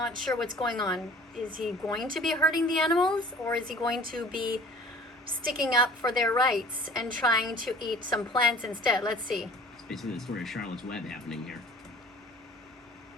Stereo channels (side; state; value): both; normal; correlation 0.48